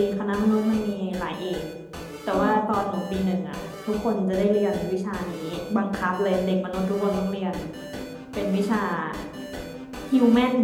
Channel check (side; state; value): both; identical; correlation 1.00